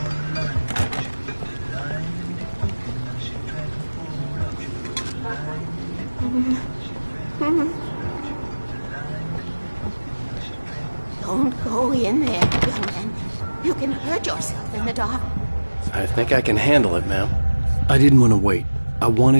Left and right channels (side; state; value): both; inverted; correlation -1.00